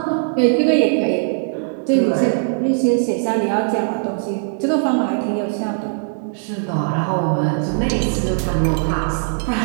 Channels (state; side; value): silent; left; 59 dB below the other